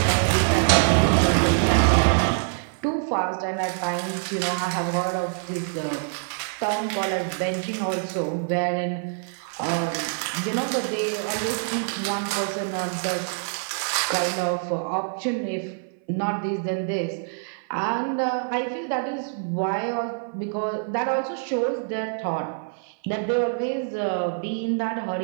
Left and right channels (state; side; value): silent; left; 56 dB below the other